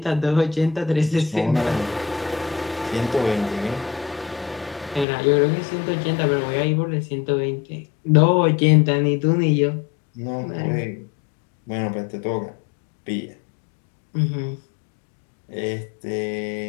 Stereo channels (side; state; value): right; drops out; at 5.1 s